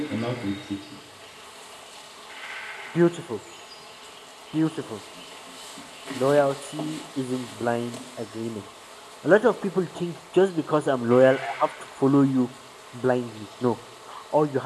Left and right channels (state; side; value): identical; both; correlation 1.00